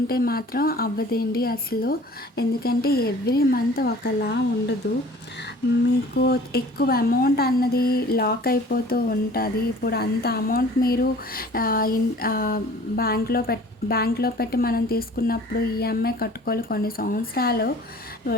మాత్రం అవ్వదండి అసలు. ఎందుకంటే ఎవ్రీ మంత్ ఒకలా ఉండదు, మీకు ఎక్కువ అమౌంట్ అన్నది లాక్ అయిపోతూ ఉంటుంది. ఇప్పుడు అంత అమౌంట్ మీరు బ్యాంక్లో పెట్టి మనం తీసుకున్నప్పుడు ఈఎంఐ కట్టుకోవాలి కొన్ని సంవత్సరాలు.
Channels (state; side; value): normal; both; correlation 0.48